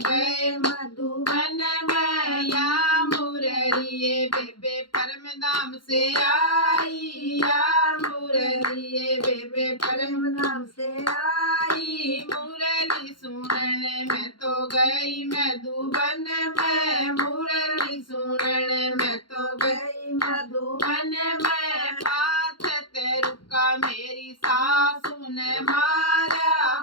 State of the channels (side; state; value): right; late; 0.72 ms